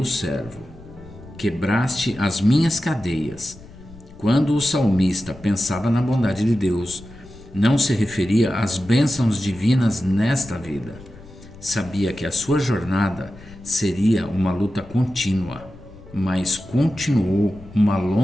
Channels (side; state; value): left; noise; rumble, 20 dB below the sound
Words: servo. Quebraste as minhas cadeias. Quando o salmista pensava na bondade de Deus, não se referia às bênçãos divinas nesta vida. Sabia que a sua jornada seria uma luta contínua, mas continuou uma